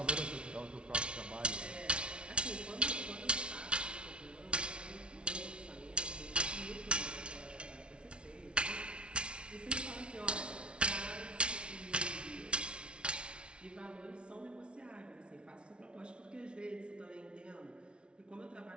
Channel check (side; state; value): left; late; 0.058 ms